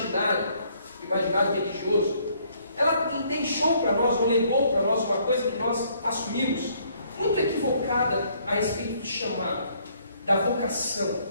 religioso, ela deixou para nós, ou legou para nós uma coisa que nós assumimos, muito equivocada a respeito do chamado, da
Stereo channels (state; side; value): inverted; both; correlation -0.65